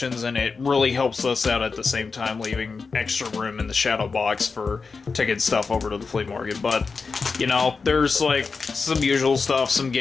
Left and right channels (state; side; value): quieter; right; 4.7 dB